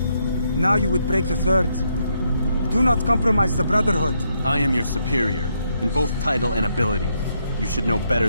Now you would break the 3rd. Do not compromise the Brotherhood. I am your superior, in both title and ability. You should know better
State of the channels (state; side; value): inverted; both; correlation -0.77